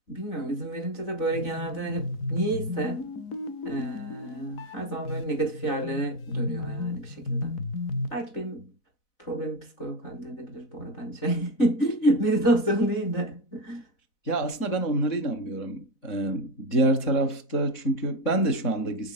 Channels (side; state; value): right; late; 4.0 ms